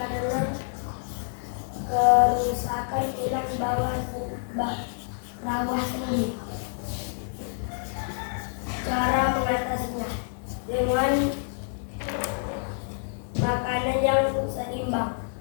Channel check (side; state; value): right; silent; 60 dB below the other